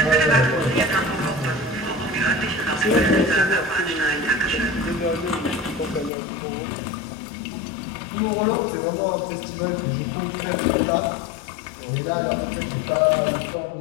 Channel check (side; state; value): right; drops out; at 6.1 s